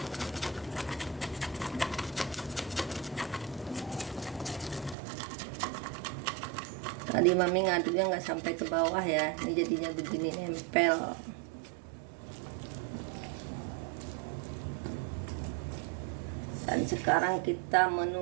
Tadi Mami ngaduknya nggak sampai ke bawah ya, ini jadinya begini nempel. Dan sekarang kita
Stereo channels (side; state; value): left; drops out; at 5.0 s